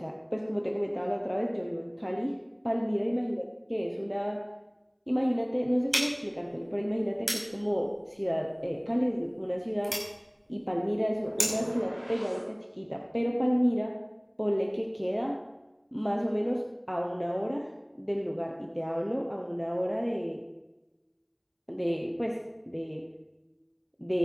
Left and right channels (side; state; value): both; identical; correlation 1.00